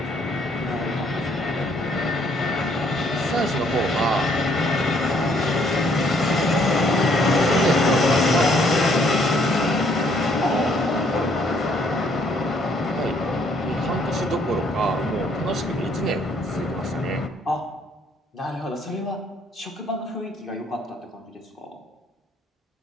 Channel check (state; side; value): normal; both; correlation 0.66